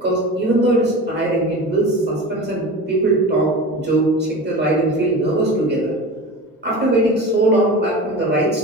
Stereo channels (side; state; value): both; normal; correlation 0.32